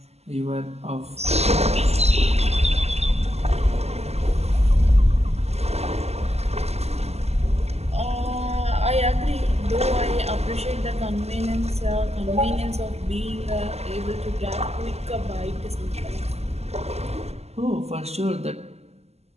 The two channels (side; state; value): left; late; 0.30 ms